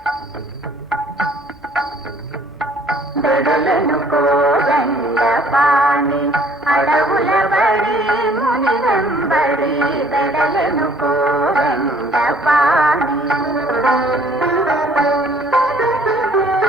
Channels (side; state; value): both; normal; correlation 0.58